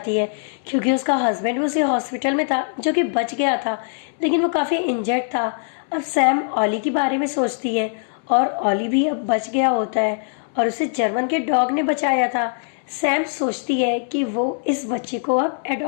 है, क्योंकि उसका हस्बैंड भी उसी हॉस्पिटल में था जो कि बच गया था, लेकिन वो काफी इंजर्ड था। अब सैम ऑली के बारे में सोचती है और ऑली भी अब बच गया होता है और उसे जर्मन के डॉग ने बचाया था। सैम सोचती है कि वो इस बच्चे को अब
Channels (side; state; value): right; silent; 62 dB below the other